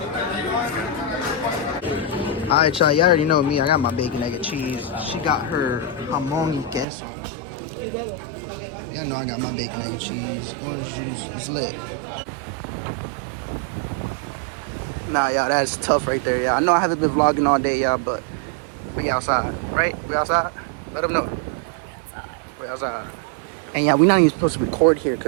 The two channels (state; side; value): drops out; left; at 6.9 s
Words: Alright, y'all. You already know me. I got my bacon, egg, and cheese. She got her jamón y queso. Y'all know I got my bacon, egg, and cheese. Orange juice. It's lit. Nah, y'all, that's tough right there, y'all. I know I haven't been vlogging all day, y'all, but we outside, right? We outside? Let them know. We outside. And yeah, we not even supposed to record here